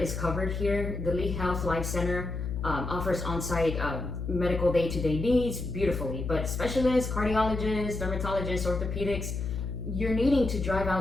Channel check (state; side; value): noise; left; hum, 4 dB below the sound